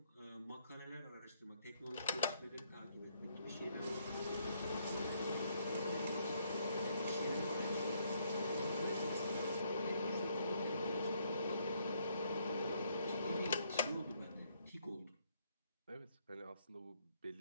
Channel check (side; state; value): both; inverted; correlation -0.70